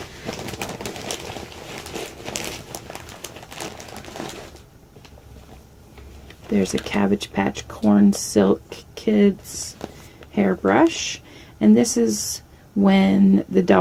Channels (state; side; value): identical; both; correlation 1.00